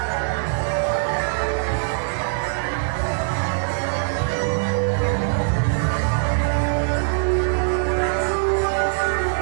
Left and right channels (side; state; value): left; silent; 59 dB below the other